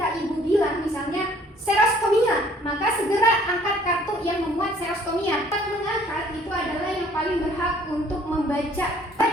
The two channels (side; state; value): both; normal; correlation 0.58